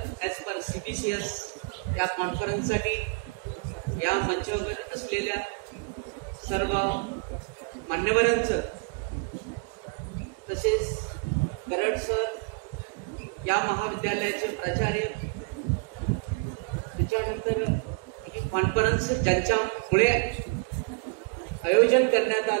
as per CBCS या कॉन्फरन्ससाठी या मंचावर असलेल्या सर्व मान्यवरांचं तसेच करड सर या महाविद्यालयाचे प्राचार्य त्याच्यानंतर ही कॉन्फरन्स ज्यांच्यामुळे आयोजन करण्यात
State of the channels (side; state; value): left; quieter; 34.1 dB